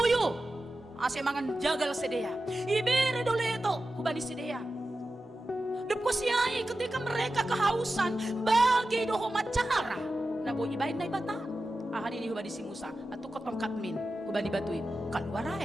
Ase mangan jagal sedea. Ibere doleto hubani sedea. Depko siya ketika mereka kehausan bagi doho macara. Nabo ibain na ibata. Ahadi ni hubani si Musa atu kotongkat min hubani batuin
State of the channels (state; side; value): normal; both; correlation 0.93